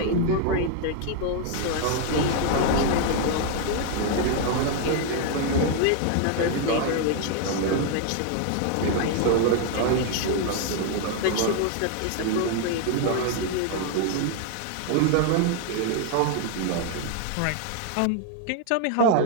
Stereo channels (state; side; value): different; both; correlation 0.00